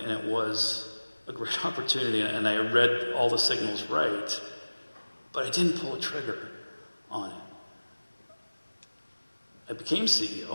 and it was a great opportunity, and I read all the signals right, but I didn't pull a trigger on it. I became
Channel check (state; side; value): inverted; both; correlation -1.00